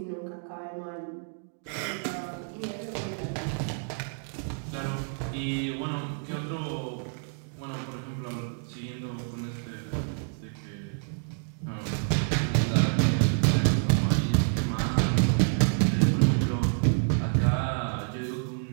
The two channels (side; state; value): left; silent; digital silence